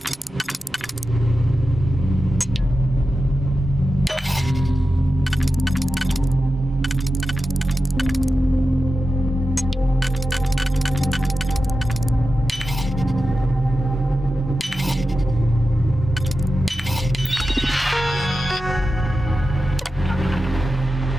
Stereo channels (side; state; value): both; normal; correlation 0.92